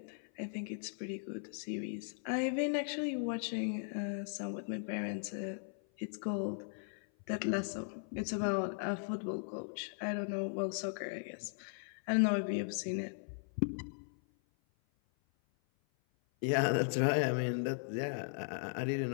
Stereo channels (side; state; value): right; silent; 53 dB below the other